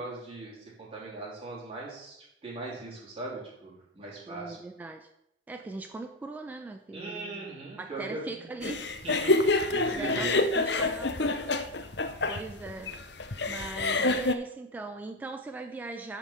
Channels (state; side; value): normal; both; correlation 0.10